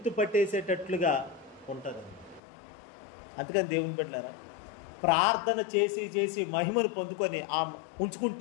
ఉంటుంది. అందుకని దేవుని బిడ్డలారా, ప్రార్థన చేసి చేసి మహిమను పొందుకొని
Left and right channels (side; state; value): right; drops out; at 2.4 s